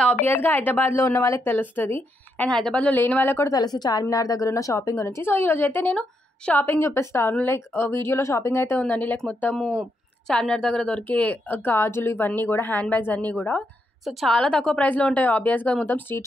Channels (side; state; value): both; normal; correlation 0.80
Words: ఆబ్వియస్గా హైదరాబాద్లో ఉన్న వాళ్ళకి తెలుస్తుంది, అండ్ హైదరాబాద్లో లేని వాళ్ళకి కూడా తెలుసు చార్మినార్ దగ్గర ఉన్న షాపింగ్ గురించి. సో ఈరోజు అయితే నేను షాపింగ్ చూపిస్తాను. వీడియోలో షాపింగ్ అయితే ఉందండి. మొత్తము చార్మినార్ దగ్గర దొరికే గాజులు ఇవన్నీ కూడా, హ్యాండ్ బ్యాగ్స్ అన్నీ కూడా సో చాలా తక్కువ ప్రైస్లో ఉంటాయి ఆబ్వియస్గా, మొత్తం